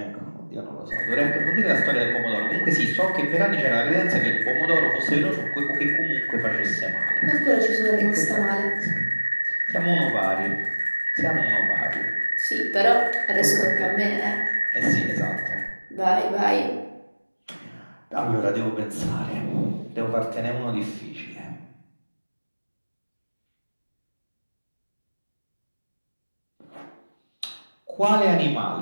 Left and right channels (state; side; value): inverted; both; correlation -1.00